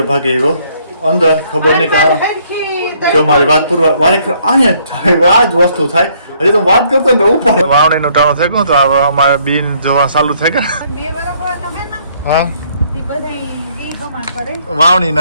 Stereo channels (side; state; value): both; inverted; correlation -0.66